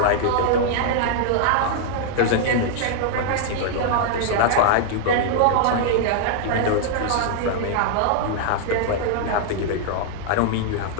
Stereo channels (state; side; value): different; both; correlation -0.01